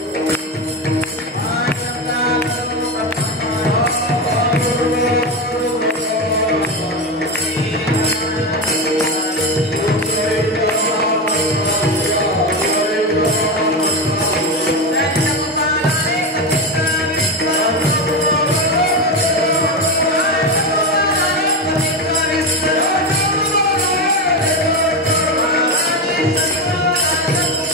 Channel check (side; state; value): both; normal; correlation 0.16